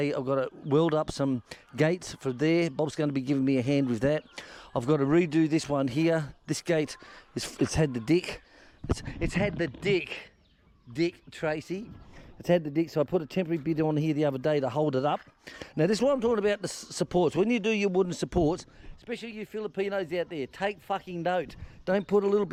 I've got to weld up some gates for there. Bob's going to be giving me a hand with that. I've got to redo this one here. This gate, it's had the dick. It's had the dick, Tracy. It's had the dick, so I put a temporary bit on here the other day to hold it up. Now this is what I'm talking about, the supports. When you do your wooden supports, especially you Filipinos out there, take fucking note. Don't put a little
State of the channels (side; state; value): both; identical; correlation 1.00